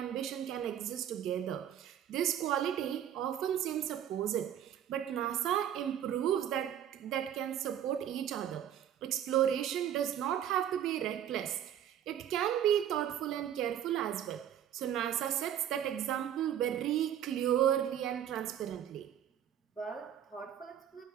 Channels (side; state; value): left; quieter; 10.2 dB